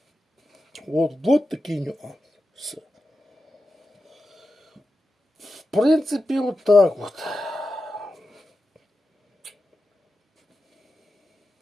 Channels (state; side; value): normal; both; correlation 0.90